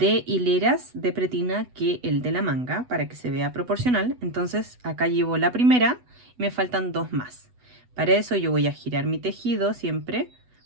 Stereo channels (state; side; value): late; left; 8.1 ms